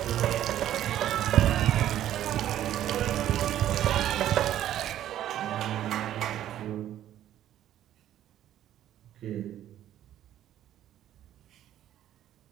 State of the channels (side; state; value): left; quieter; 12.0 dB